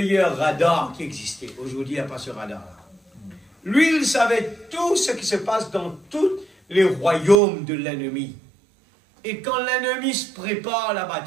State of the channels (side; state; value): left; drops out; at 7.4 s